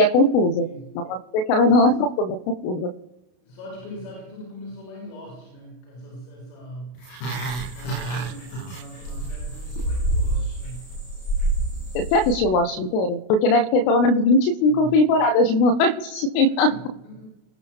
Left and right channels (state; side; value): late; right; 32 ms